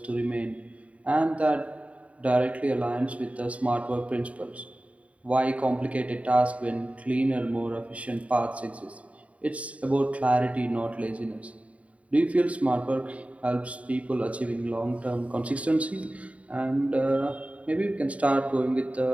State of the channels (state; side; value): late; left; 0.066 ms